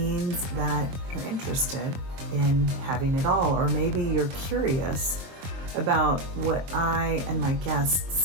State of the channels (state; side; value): late; left; 23 ms